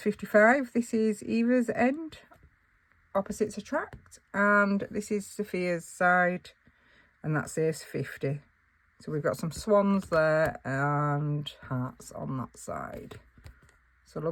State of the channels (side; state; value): both; identical; correlation 1.00